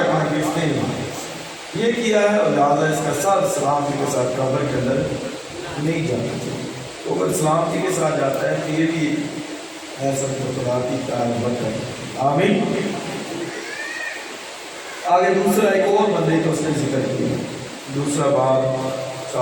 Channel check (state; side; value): identical; both; correlation 1.00